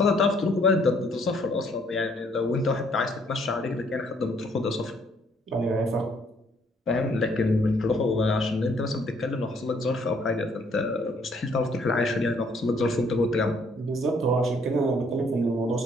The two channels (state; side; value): normal; both; correlation 0.65